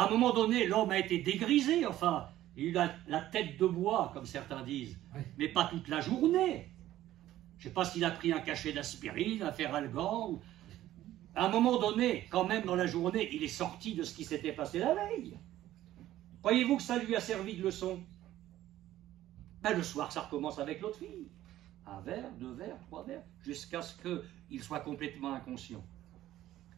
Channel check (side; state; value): left; quieter; 13.9 dB